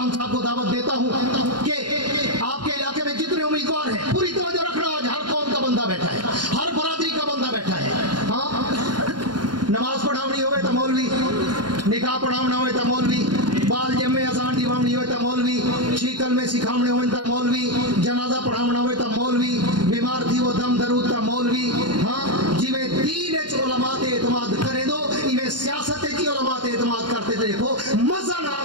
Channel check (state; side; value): late; left; 0.71 ms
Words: साहब को दावत देता हूँ कि आपके इलाके में जितने उम्मीदवार हैं पूरी तवज्जो रखना। आज हर कौम का बंदा बैठा है, हर बरादरी का बंदा बैठा है। हाँ, नमाज पढ़ावनी होवे तो मौलवी, निकाह पढ़ावना होवे तो मौलवी, बाल जमे आसान दिवावनी होवे तो मौलवी, शीकल में सिखावने होवे तो मौलवी, जनाजा पढ़ावना होवे तो मौलवी, बीमार थी वो दम दरूद तो मौलवी। हाँ, जिवे दीन च उलमा ते एतमाद करे दो, इवे सियासत च उलमा ते एतमाद करते देखो, मजा ना